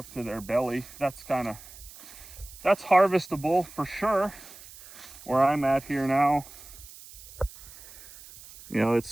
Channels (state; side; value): noise; right; hiss, 18 dB below the sound